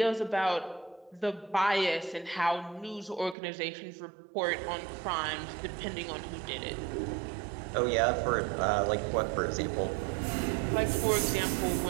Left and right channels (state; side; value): drops out; left; at 3.4 s